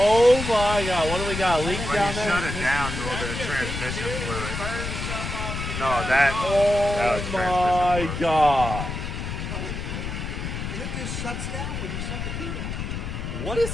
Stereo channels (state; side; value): noise; left; rumble, 5 dB below the sound